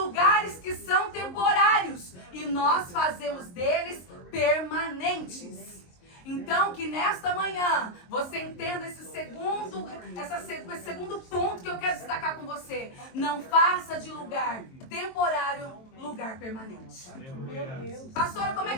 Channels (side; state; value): right; late; 23 ms